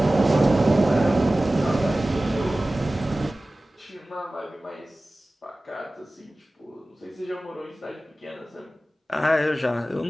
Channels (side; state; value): both; normal; correlation 0.97